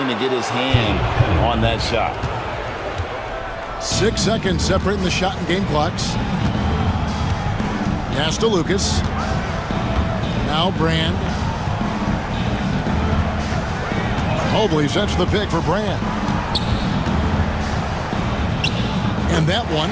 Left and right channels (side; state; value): both; identical; correlation 1.00